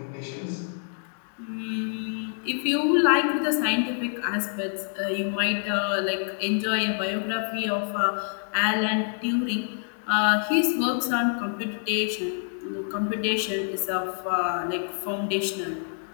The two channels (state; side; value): silent; right; 60 dB below the other